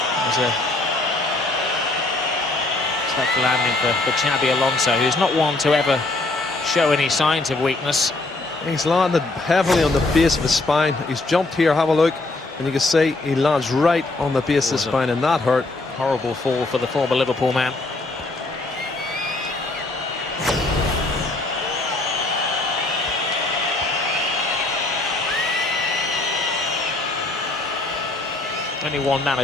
There's a tough landing for Xabi Alonso, who's not one to ever show any signs of weakness. He's landed heavily on the base of his spine. He's jumped here, have a look, and you can see he lands right on the base of the spine, and that hurt. Horrible fall for the former Liverpool man. Only one man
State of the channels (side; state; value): right; quieter; 3.0 dB